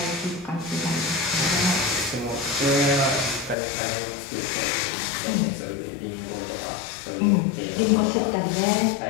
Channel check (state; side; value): drops out; right; at 3.6 s